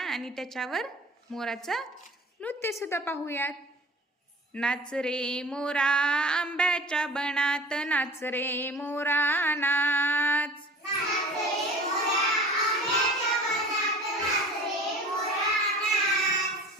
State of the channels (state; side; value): normal; both; correlation 0.42